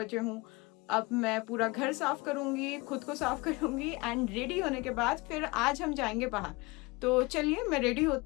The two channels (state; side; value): quieter; right; 24.8 dB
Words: हूँ। अब मैं पूरा घर साफ करूंगी, खुद को साफ करूंगी एंड रेडी होने के बाद फिर आज हम जाएंगे बाहर। तो चलिए मैं रेडी